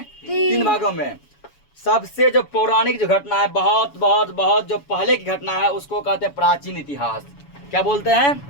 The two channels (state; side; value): late; right; 7.1 ms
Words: 3 भागों में। सबसे जो पौराणिक जो घटना है, बहुत जो पहले की घटना है, उसको कहते हैं प्राचीन इतिहास। क्या बोलते हैं?